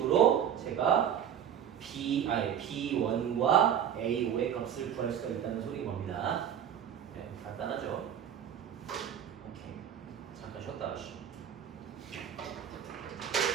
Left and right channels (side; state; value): left; quieter; 9.1 dB